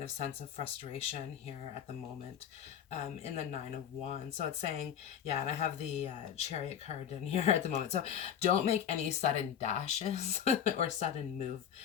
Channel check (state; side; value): quieter; right; 8.9 dB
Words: of sense of frustration here at the moment in the Nine of Wands. So it's saying, yeah, and I have the Chariot card in here at the moment. So don't make any sudden dashes or sudden